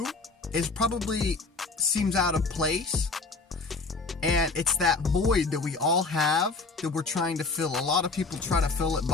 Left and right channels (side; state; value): right; quieter; 4.0 dB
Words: seems out of place. And it's that void that we all have that we're trying to fill. A lot of people try to fill it